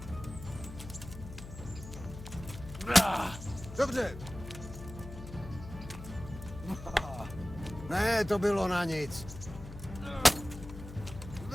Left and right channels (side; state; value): left; noise; hum, 12 dB below the sound